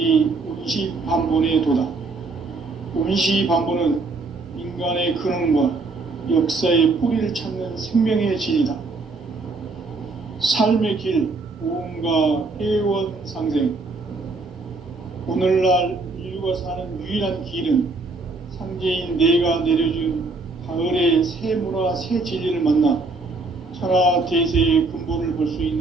운시반본의 도다. 운시반본은 인간의 근원과 역사의 뿌리를 찾는 생명의 진리다. 삶의 길, 보험과 회원 상생. 오늘날 인류가 사는 유일한 길은 상제인 내가 내려준 가을의 새 문화, 새 진리를 만나 천하 대세의 근본을 볼 수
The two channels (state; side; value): quieter; left; 3.7 dB